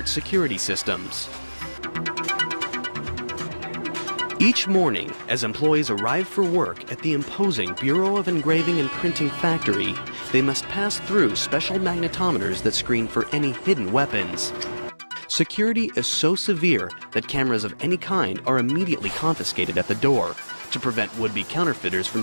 security systems. Each morning, as employees arrive for work at the imposing Bureau of Engraving and Printing factory, they must pass through special magnetometers that screen for any hidden weapons. Security is so severe that cameras of any kind are immediately confiscated at the door to prevent would-be counterfeiters from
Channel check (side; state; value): both; inverted; correlation -1.00